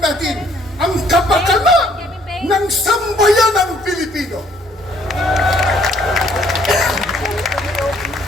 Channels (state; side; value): normal; both; correlation 0.64